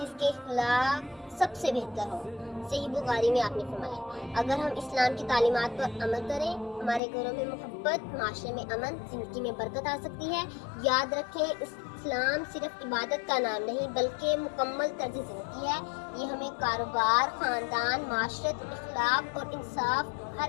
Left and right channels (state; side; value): drops out; right; at 7.0 s